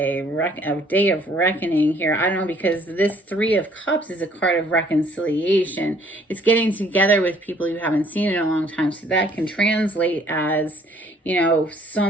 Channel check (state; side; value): normal; both; correlation 0.61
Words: a day of reckoning here. I don't know, because this Three of Cups is a card of reconciliation. It's getting together with people you haven't seen in a long time. So that can translate as, you know,